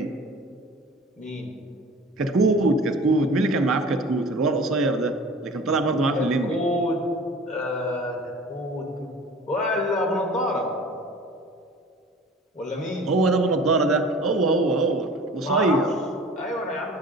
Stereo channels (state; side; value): normal; both; correlation 0.43